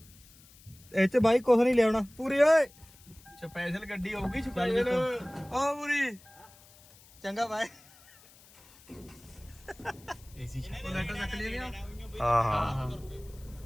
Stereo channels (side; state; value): left; noise; hiss, 25 dB below the sound